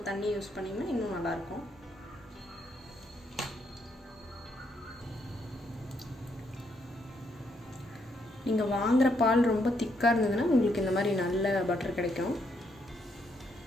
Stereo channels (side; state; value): both; normal; correlation 0.75